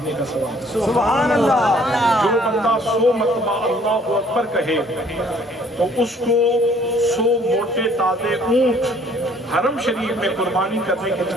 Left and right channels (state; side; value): normal; both; correlation 0.59